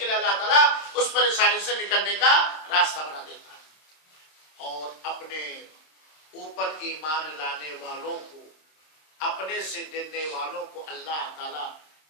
لیے اللہ تعالیٰ اس پریشانی سے نکلنے کا راستہ بنا دیتا ہے۔ اور اپنے اوپر ایمان لانے والوں کو، اپنے سے ڈرنے والوں کو اللہ تعالیٰ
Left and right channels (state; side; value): late; right; 26 ms